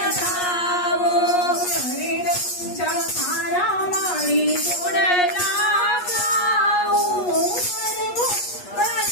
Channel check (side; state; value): right; late; 8.3 ms